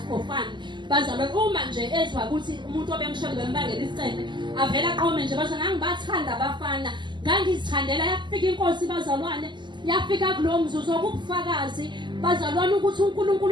for fun bazalwane. Uma nje ezwa ukuthi umuntu obemshona bembangela isicebe avela aqome nje bazalwane ngangibathanda abafana ngangizithandela. Yafika inkosi bazalwane yafika kulo mzuzu okubufakazi bazalwane ukuthi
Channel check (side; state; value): left; late; 0.22 ms